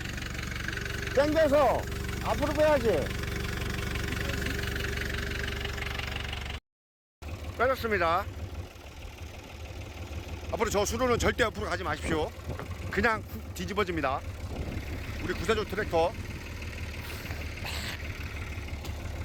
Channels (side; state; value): both; identical; correlation 1.00